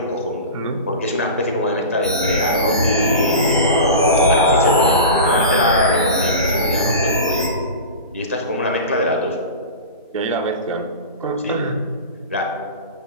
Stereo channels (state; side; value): inverted; both; correlation -0.30